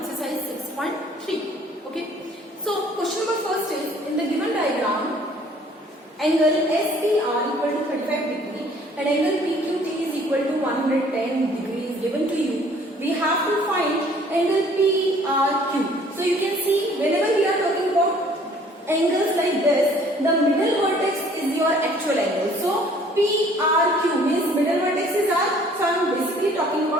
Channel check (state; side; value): normal; both; correlation 0.56